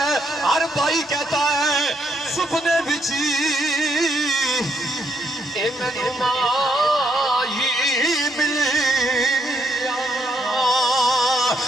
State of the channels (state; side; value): normal; both; correlation 0.74